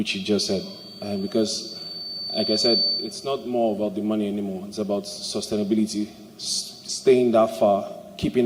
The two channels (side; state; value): both; identical; correlation 1.00